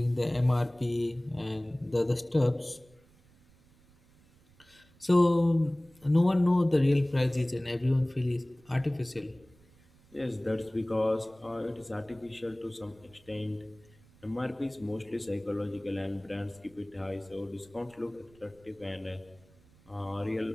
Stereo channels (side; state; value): right; noise; rumble, 28 dB below the sound